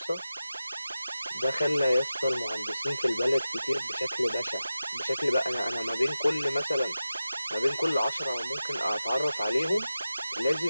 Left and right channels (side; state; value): both; inverted; correlation -0.94